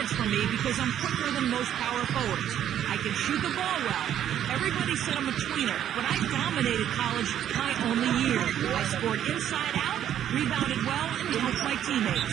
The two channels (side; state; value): left; quieter; 10.5 dB